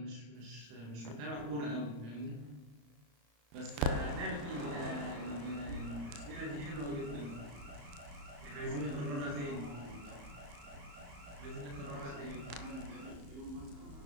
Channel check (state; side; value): late; left; 35 ms